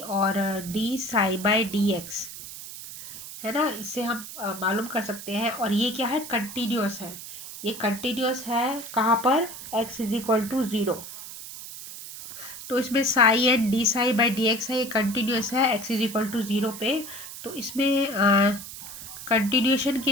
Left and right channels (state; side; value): noise; right; hiss, 12 dB below the sound